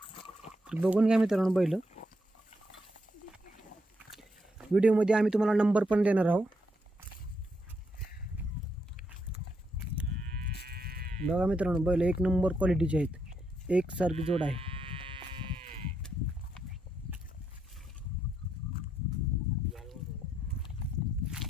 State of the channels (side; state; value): both; normal; correlation 0.78